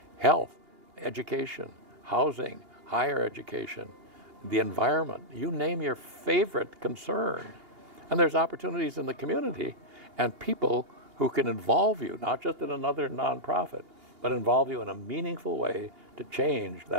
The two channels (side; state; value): left; late; 2.8 ms